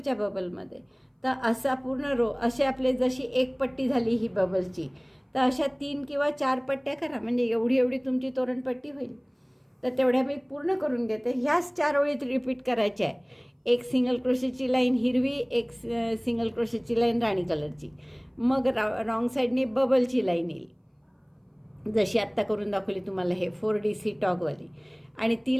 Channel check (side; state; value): both; identical; correlation 1.00